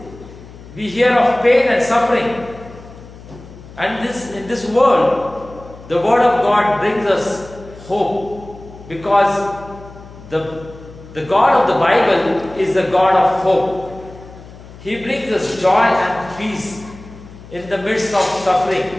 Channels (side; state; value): left; noise; hum, 18 dB below the sound